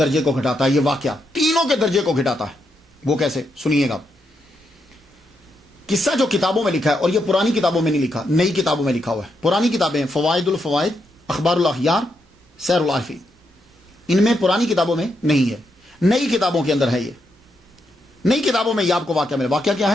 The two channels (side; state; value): both; normal; correlation 0.81